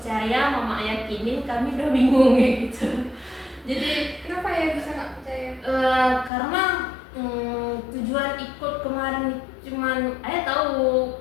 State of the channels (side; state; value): right; drops out; at 6.3 s